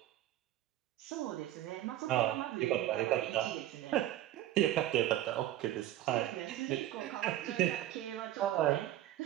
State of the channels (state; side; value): quieter; left; 13.3 dB